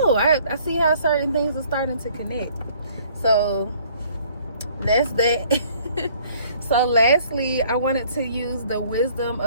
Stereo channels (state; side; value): inverted; both; correlation -0.59